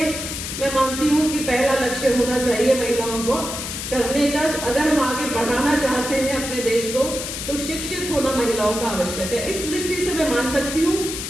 मैं मानती हूँ कि पहला लक्ष्य होना चाहिए महिलाओं को करने का। अगर हम आगे बढ़ाना चाहते हैं अपने देश को, तो शिक्षित होना महिलाओं का आवश्यक है। इस दृष्टि से मैं मान सकती हूँ,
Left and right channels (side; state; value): left; noise; hiss, 6 dB below the sound